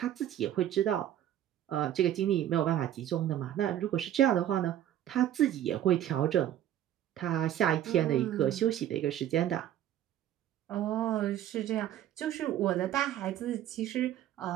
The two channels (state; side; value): quieter; left; 11.6 dB